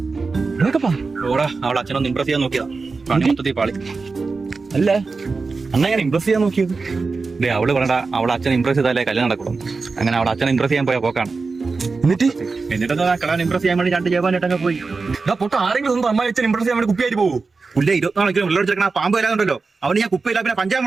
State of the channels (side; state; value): left; quieter; 4.3 dB